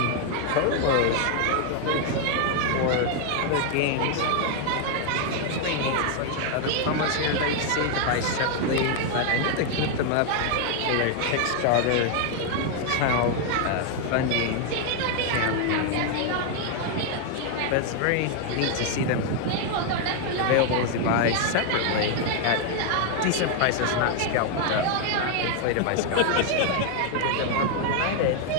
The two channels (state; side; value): different; both; correlation 0.00